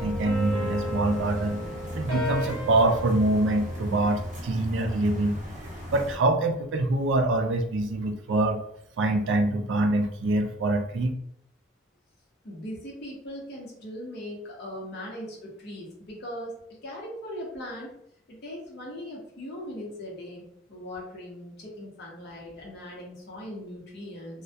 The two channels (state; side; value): normal; both; correlation 0.41